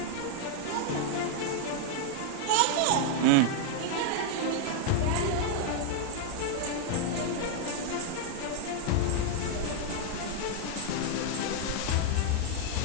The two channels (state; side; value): different; both; correlation 0.00